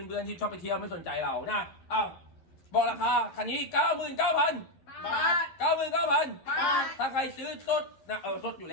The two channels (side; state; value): right; late; 11 ms